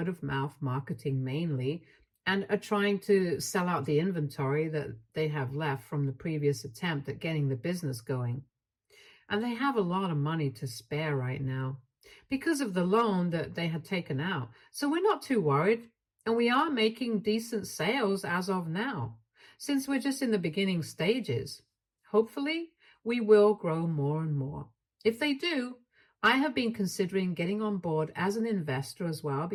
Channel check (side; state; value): both; identical; correlation 1.00